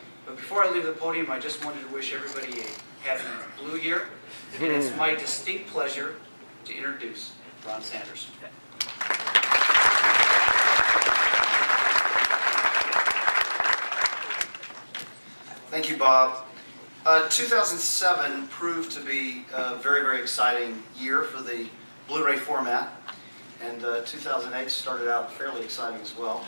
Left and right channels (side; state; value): both; inverted; correlation -1.00